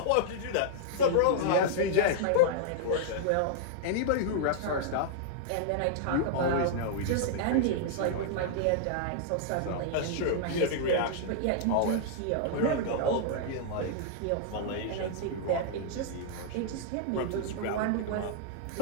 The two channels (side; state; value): both; different; correlation -0.01